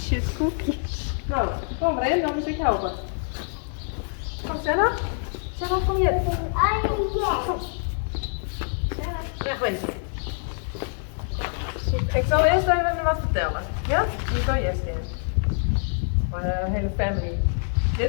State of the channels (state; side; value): silent; right; 59 dB below the other